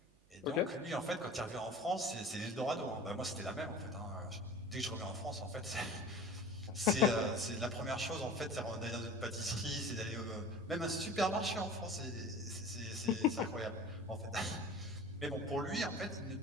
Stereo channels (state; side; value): noise; right; hum, 29 dB below the sound